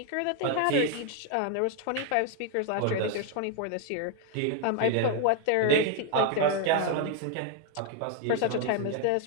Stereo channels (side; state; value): both; different; correlation 0.01